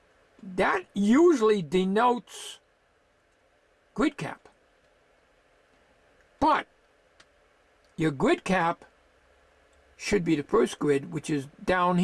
That usually denotes grid cap. But your grid cap should be the first grid, which is down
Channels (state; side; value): identical; both; correlation 1.00